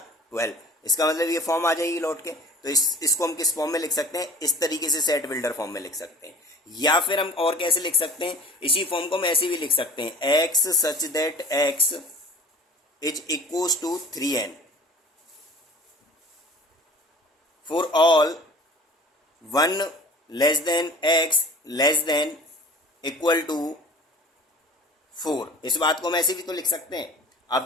12। इसका मतलब ये फॉर्म आ जाएगी लौट के। तो इसको हम किस फॉर्म में लिख सकते हैं? इस तरीके से सेट बिल्डर फॉर्म में लिख सकते हैं। या फिर हम और कैसे लिख सकते हैं? इसी फॉर्म को हम ऐसे भी लिख सकते हैं x such that x is equals to 3n for all 1 less than x less than equal to 4। इस बात को हम ऐसे भी तो लिख सकते हैं। आप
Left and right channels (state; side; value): normal; both; correlation 0.45